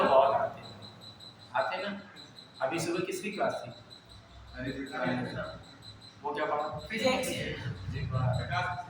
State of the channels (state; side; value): identical; both; correlation 1.00